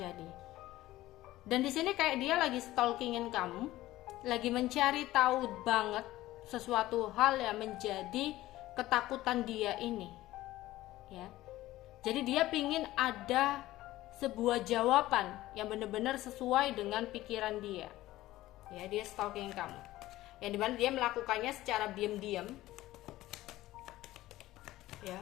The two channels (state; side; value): quieter; right; 16.2 dB